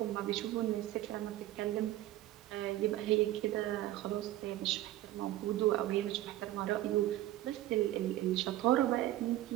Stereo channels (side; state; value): left; quieter; 14.8 dB